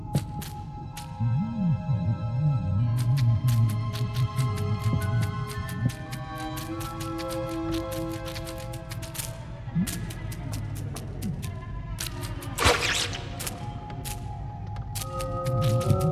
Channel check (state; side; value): identical; both; correlation 1.00